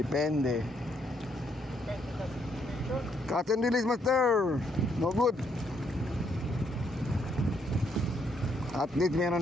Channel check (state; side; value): normal; both; correlation 0.73